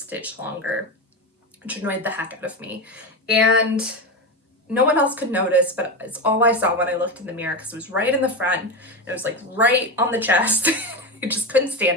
longer, which annoyed the heck out of me. And no one else could notice, but it's all I saw when I looked in the mirror, because it was right in the front, and it was like right on the chest. I just couldn't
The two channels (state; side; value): normal; both; correlation 0.17